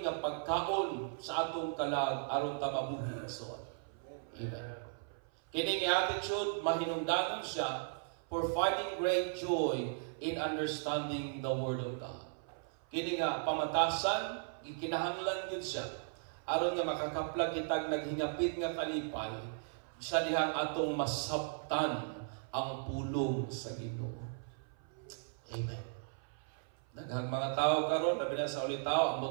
nga pagkaon sa atong kalag aron ta mabuhi igsoon. Amen. Kini nga attitude mahinungdanon siya for finding great joy in understanding the Word of God. Kini nga pamatasan gikinahanglan gyud siya aron nga makakaplag kitag naghingapit nga kalipay sa dihang atong masabtan ang pulong sa Ginoo. Amen. Daghang mga tao karon, labi na sa ulit tao, ang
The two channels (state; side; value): silent; left; 53 dB below the other